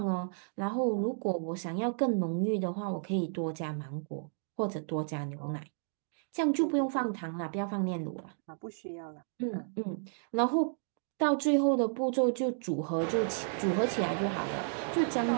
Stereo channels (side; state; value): left; silent; digital silence